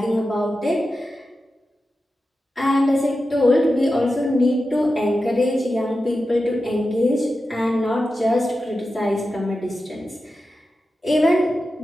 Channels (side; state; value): both; normal; correlation 0.92